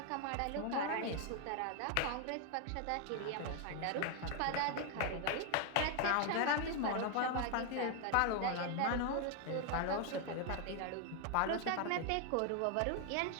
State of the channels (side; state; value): both; different; correlation 0.00